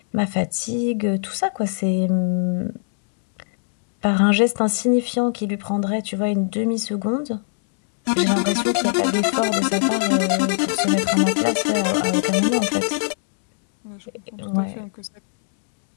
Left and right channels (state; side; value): silent; right; 65 dB below the other